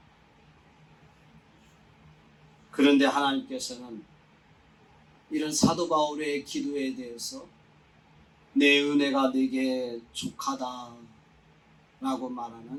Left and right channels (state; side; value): identical; both; correlation 1.00